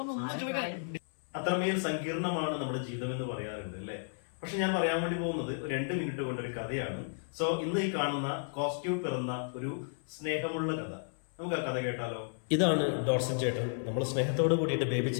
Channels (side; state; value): right; silent; 56 dB below the other